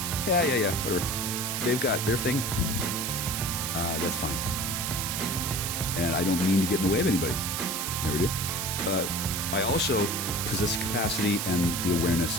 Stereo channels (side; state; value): right; noise; hiss, 2 dB below the sound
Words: Yeah, whatever. They've got their thing. That's fine. And I don't mean to get in the way of anybody. Never do. I also possess the capacity and the awareness